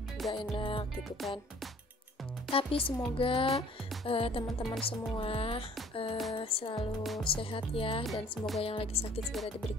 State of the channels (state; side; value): normal; both; correlation 0.54